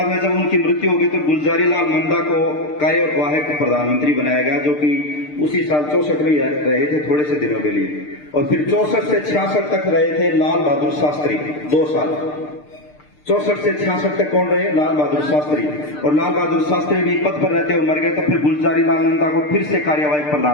में जब उनकी मृत्यु हो गई तो गुलजारी लाल नंदा को कार्यवाहक प्रधानमंत्री बनाया गया, जो कि उसी साल 64 में रहे थे थोड़े से दिनों के लिए। और फिर 64 से 66 तक रहे थे लाल बहादुर शास्त्री, 2 साल। 64 से 66 तक कौन रहे? लाल बहादुर शास्त्री। और लाल बहादुर शास्त्री भी पद पर रहते हुए मर गए। तो फिर गुलजारी लाल नंदा को फिर से कार्यवाहक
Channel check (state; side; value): late; right; 6.7 ms